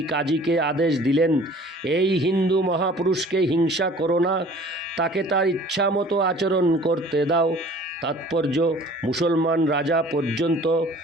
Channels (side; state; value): both; normal; correlation 0.49